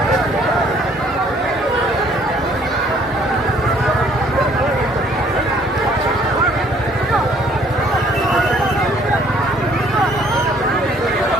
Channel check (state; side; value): normal; both; correlation 0.61